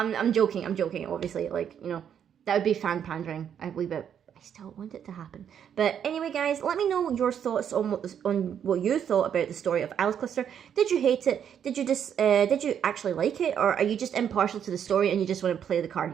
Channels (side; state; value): left; quieter; 8.6 dB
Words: joking, obviously, like, you know, that would be fan pandering a wee bit. I still want it to happen. But anyway, guys, let me know your thoughts on what you thought about the story of Alice Cluster. Did you hate it? Did you actually like it? Or are you just impartial to the story and you just want to play the card